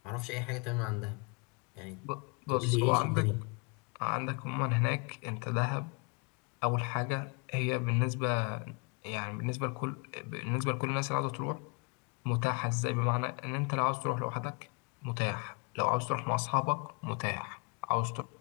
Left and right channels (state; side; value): quieter; right; 33.0 dB